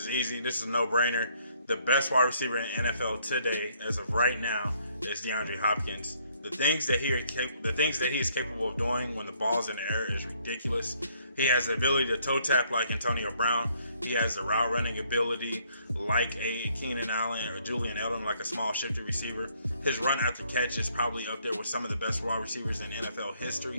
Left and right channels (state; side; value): inverted; both; correlation -0.67